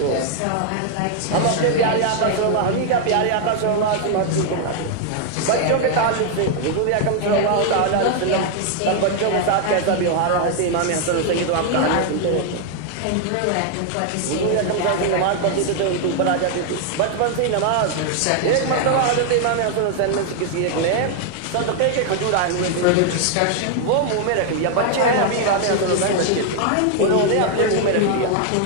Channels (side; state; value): both; different; correlation 0.00